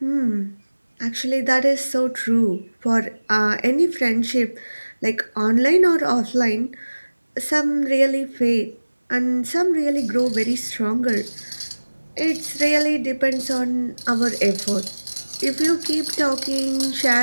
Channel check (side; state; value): both; inverted; correlation -1.00